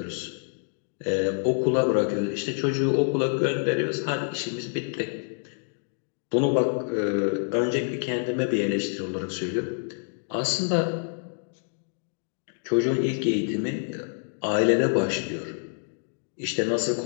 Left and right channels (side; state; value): right; silent; 59 dB below the other